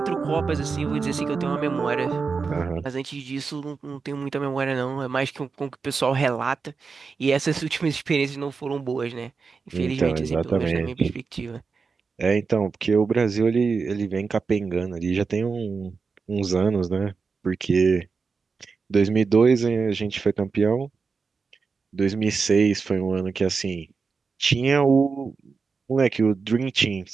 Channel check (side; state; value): left; quieter; 4.9 dB